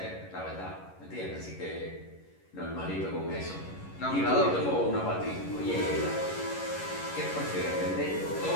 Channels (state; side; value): late; right; 11 ms